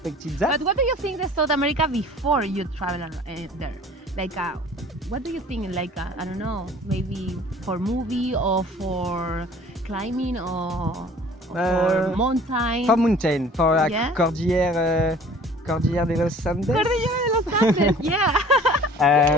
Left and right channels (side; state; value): both; normal; correlation 0.48